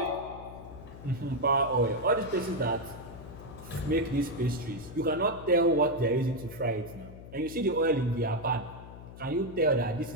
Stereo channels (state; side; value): noise; left; hum, 15 dB below the sound